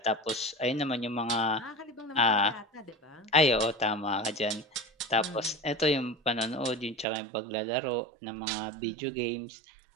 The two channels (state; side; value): drops out; left; at 7.1 s